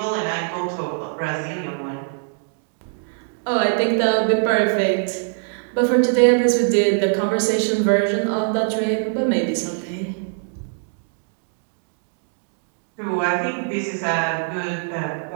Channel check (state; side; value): silent; left; digital silence